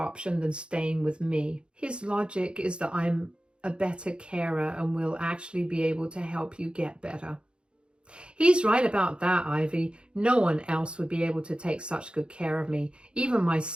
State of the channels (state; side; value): late; left; 0.054 ms